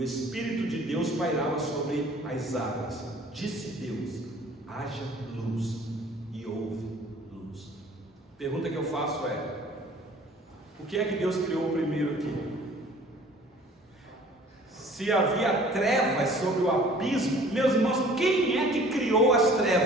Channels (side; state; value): both; normal; correlation 0.51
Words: Espírito de Deus pairava sobre as águas. Disse Deus: haja luz, pergunta que eu faço é: o que é que Deus criou primeiro aqui? Se havia trevas sobre o abismo, meus irmãos, quem é que criou as